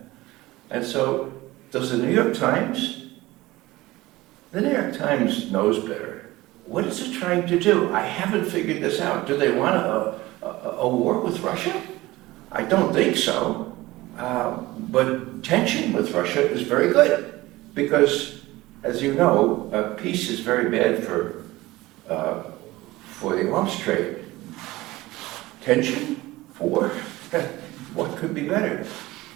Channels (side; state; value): left; quieter; 18.9 dB